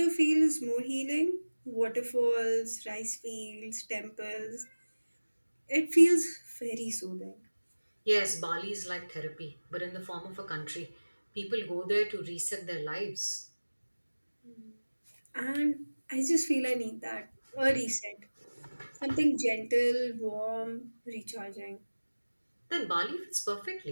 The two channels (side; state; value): both; inverted; correlation -1.00